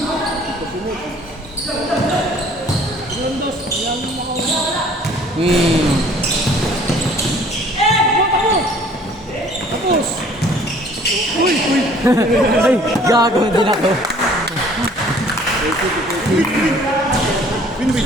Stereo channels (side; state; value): both; normal; correlation 0.54